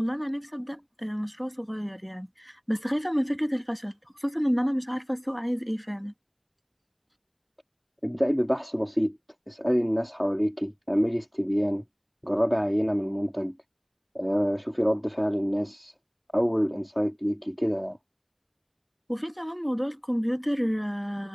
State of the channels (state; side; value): identical; both; correlation 1.00